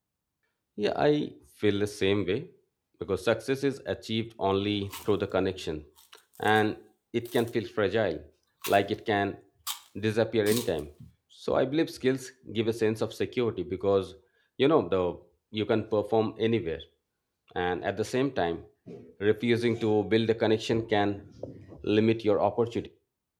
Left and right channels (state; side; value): identical; both; correlation 1.00